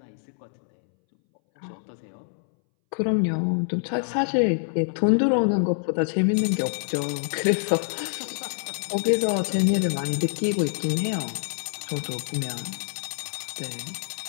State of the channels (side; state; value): right; silent; 61 dB below the other